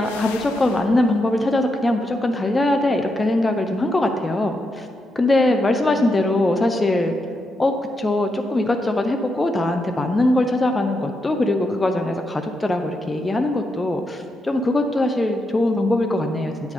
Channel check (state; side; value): normal; both; correlation 0.83